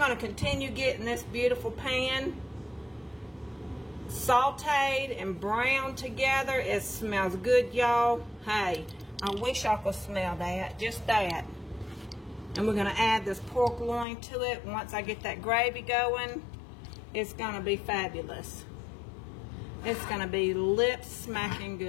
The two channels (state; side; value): drops out; right; at 14.1 s